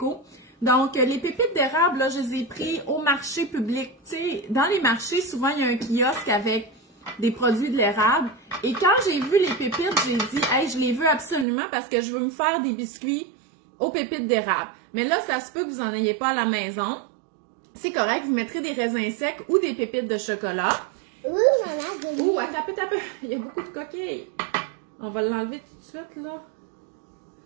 Donc, les pépites d'érable, là, je les ai pris au marché public. Tu sais, dans les marchés, souvent, il y a un kiosque avec des produits de l'érable. Et quand j'ai vu les pépites, j'ai dit, hey, je les veux absolument parce que je veux me faire des biscuits aux pépites d'érable. Mais là, ça se peut que vous n'en ayez pas à la maison. C'est correct, vous mettrez des raisins secs ou des pépites de chocolat. Oui, maman, Ouh, attends un peu. Il y a beaucoup de coquilles. On va l'enlever tout de suite, là.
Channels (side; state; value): left; drops out; at 11.5 s